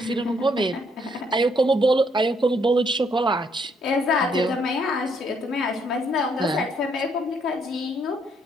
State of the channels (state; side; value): normal; both; correlation 0.71